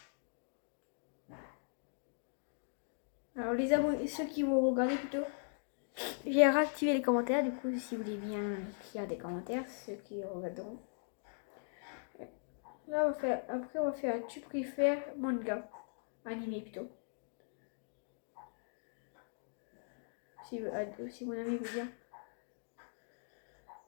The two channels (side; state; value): right; silent; digital silence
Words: Alors, les abonnés, ceux qui vont regarder plutôt, j'ai réactivé les commentaires. Du coup, si vous voulez bien écrire des commentaires, ceux qui regarderont. Là, après, on va faire tu préfères manga, animé plutôt. Si mon ami veut bien.